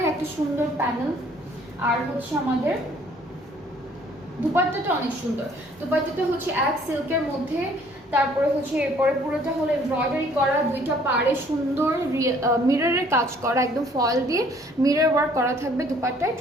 একটা সুন্দর প্যানেল। আর হচ্ছে আমাদের দুপাট্টাটা অনেক সুন্দর, দুপাট্টাটা হচ্ছে এক সিল্কের মধ্যে, তারপরে হচ্ছে এরপরে পুরোটা হলো এমব্রয়ডারি করা, দুইটা পাড়ে সুন্দর মিররের কাজ করা, একদম ফয়েল দিয়ে মিরর ওয়ার্ক করা থাকবে দুপাট্টায়।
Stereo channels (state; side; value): normal; both; correlation 0.59